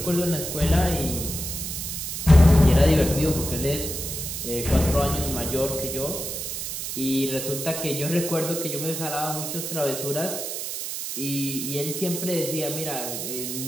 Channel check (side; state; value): right; noise; hiss, 5 dB below the sound